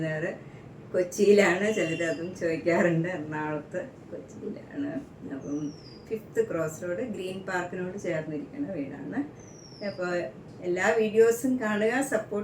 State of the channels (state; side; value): identical; both; correlation 1.00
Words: നഗർ കൊച്ചിയിലാണ്. ചിലർ അതും ചോദിക്കാറുണ്ട്. എറണാകുളത്ത്, കൊച്ചിയിലാണ്. അപ്പം 5th ക്രോസ് റോഡ് ഗ്രീൻ പാർക്കിനോട് ചേർന്നിരിക്കുന്ന വീടാണ്. അപ്പോൾ എല്ലാ വീഡിയോസും കാണുക,